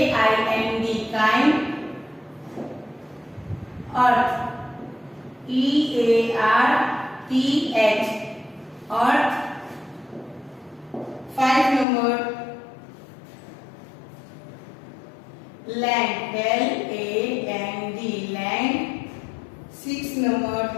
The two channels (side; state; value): right; drops out; at 11.9 s